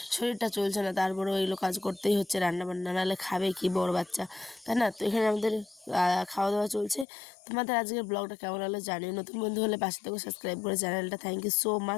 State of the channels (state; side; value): drops out; right; at 7.1 s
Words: শরীরটা চলছে না, তারপরেও এগুলো কাজ করতেই হচ্ছে, রান্না বান্না নাহলে খাবে কি বড় বাচ্চা, তাই না? তো এখানে আমাদের খাওয়া দাওয়া চলছে। তোমাদের আজকের ব্লগটা কেমন হলো জানিও। নতুন বন্ধু হলে পাশে থেকে সাবস্ক্রাইব করে চ্যানেলটা। Thank you so